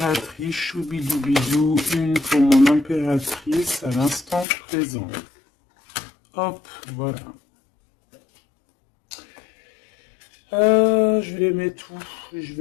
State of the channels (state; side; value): drops out; right; at 4.5 s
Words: choubidoubidou, une pour mon impératrice à l'instant présent. Hop, voilà. Je vais les mettre où? Je